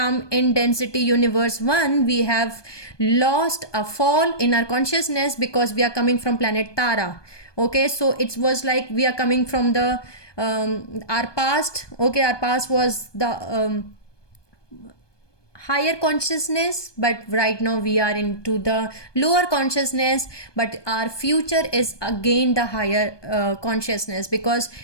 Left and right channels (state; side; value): late; right; 1.2 ms